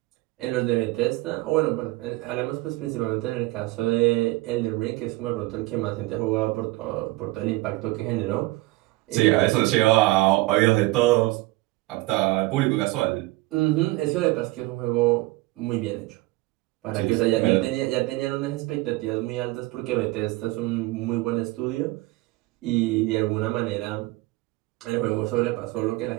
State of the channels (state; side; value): quieter; left; 20.5 dB